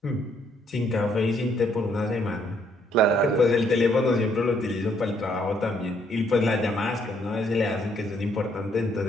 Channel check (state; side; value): normal; both; correlation 0.69